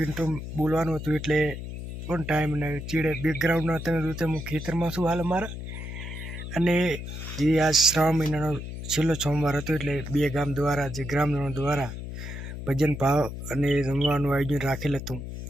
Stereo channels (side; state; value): left; noise; hum, 8 dB below the sound